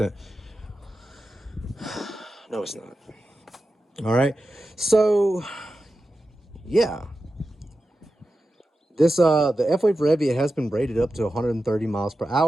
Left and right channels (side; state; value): both; normal; correlation 0.92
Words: No, it's not. All right, so yeah, this the F-Wave Revia has been rated up to 130 miles per